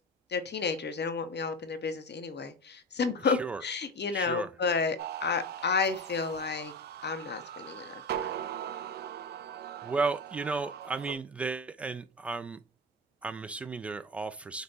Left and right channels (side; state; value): both; normal; correlation 0.23